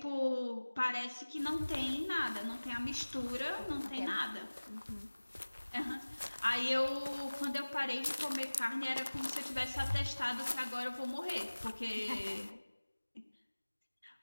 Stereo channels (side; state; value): both; inverted; correlation -1.00